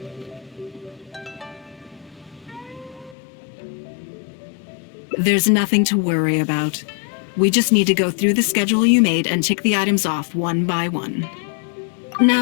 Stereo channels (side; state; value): right; drops out; at 3.2 s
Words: There's nothing to worry about. We just need to go through the schedule you made and tick the items off one by one.